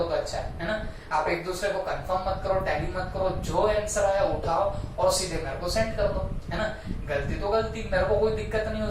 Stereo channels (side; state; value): both; identical; correlation 1.00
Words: तो अच्छा है ना। आप एक दूसरे को कंफर्म मत करो, टैली मत करो, जो आंसर आया उठाओ और सीधे मेरे को सेंड कर दो, है ना। गलती तो गलती, मेरे को कोई दिक्कत नहीं